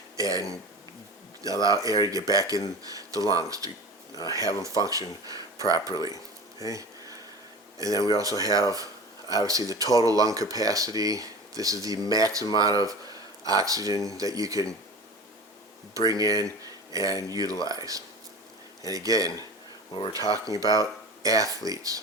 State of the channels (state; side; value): normal; both; correlation 0.34